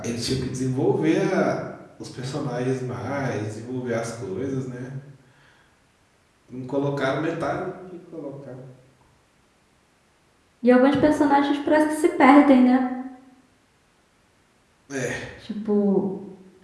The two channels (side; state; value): both; identical; correlation 1.00